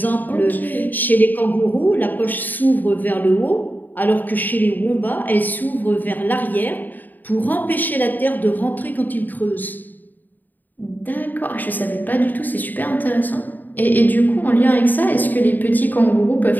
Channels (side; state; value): right; late; 0.087 ms